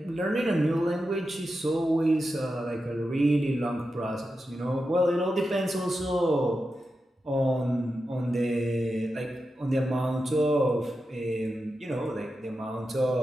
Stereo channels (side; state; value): both; normal; correlation 0.90